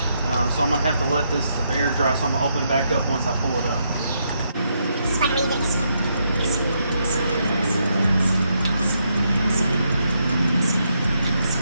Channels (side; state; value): both; inverted; correlation -0.78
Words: So I'm going to have to let this air dry, so I'm going to open it back up once I pull it up.